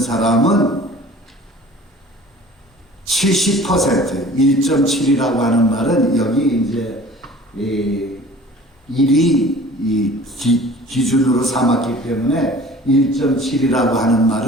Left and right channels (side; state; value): both; normal; correlation 0.46